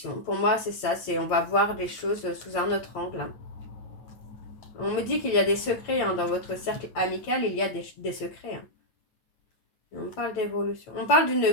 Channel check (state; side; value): late; right; 9.2 ms